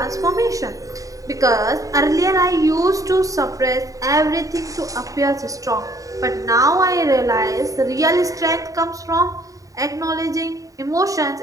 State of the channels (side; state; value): left; late; 0.16 ms